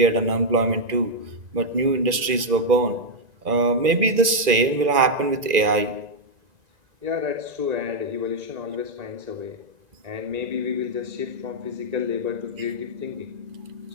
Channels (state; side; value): late; left; 2.4 ms